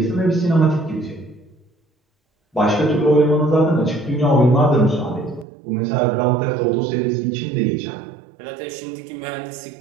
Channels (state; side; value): drops out; left; at 5.5 s